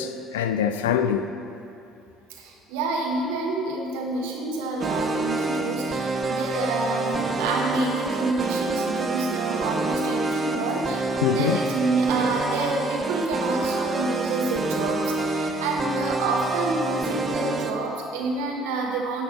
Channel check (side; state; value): both; normal; correlation 0.54